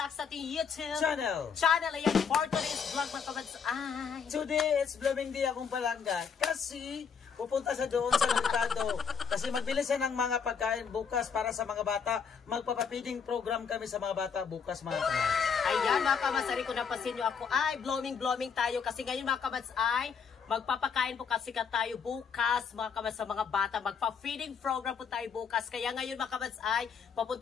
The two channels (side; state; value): right; quieter; 6.5 dB